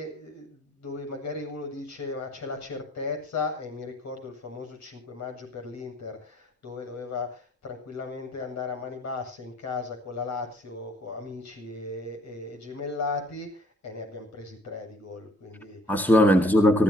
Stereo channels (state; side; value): normal; both; correlation 0.60